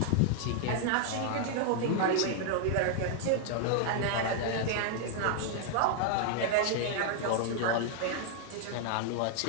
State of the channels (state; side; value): different; both; correlation 0.00